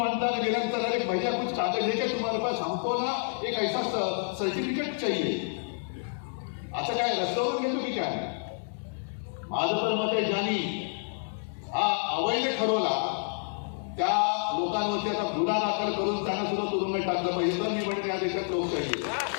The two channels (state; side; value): silent; right; digital silence